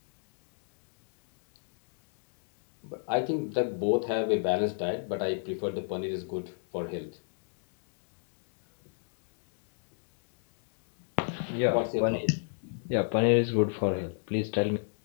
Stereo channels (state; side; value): silent; right; digital silence